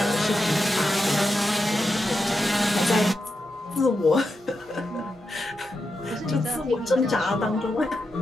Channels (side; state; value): both; normal; correlation 0.87